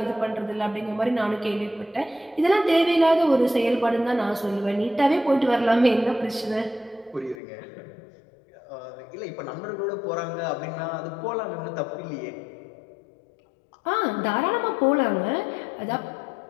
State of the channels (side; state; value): right; drops out; at 7.4 s